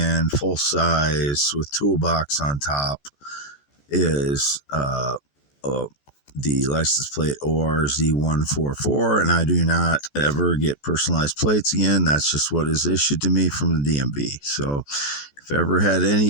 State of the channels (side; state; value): right; late; 14 ms